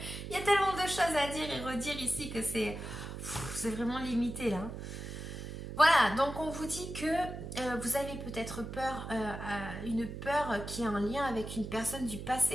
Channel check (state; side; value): noise; right; hum, 8 dB below the sound